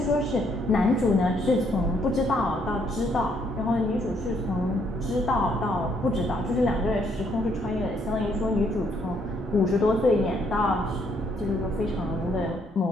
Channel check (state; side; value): normal; both; correlation 0.70